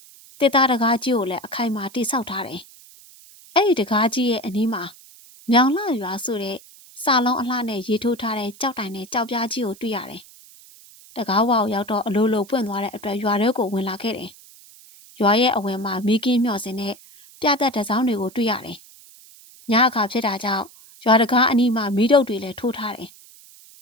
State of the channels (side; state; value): right; noise; hiss, 23 dB below the sound